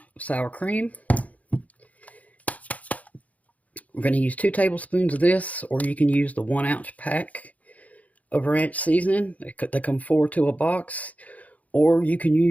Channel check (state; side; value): late; right; 0.072 ms